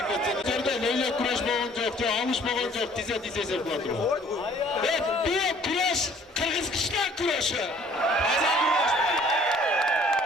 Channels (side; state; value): both; normal; correlation 0.56